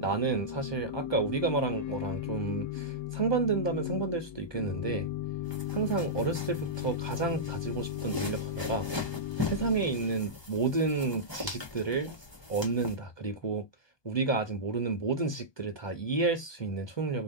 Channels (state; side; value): late; right; 1.2 ms